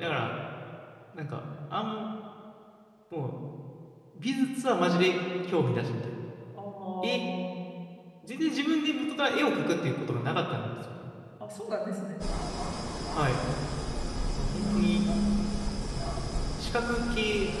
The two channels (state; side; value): identical; both; correlation 1.00